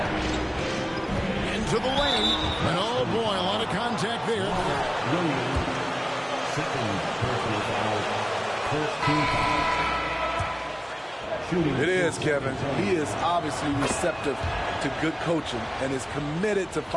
Into the lane. And oh boy, a lot of contact there. It is, Kevin. He is obviously receptive to good coaching and is committed to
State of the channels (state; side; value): identical; both; correlation 1.00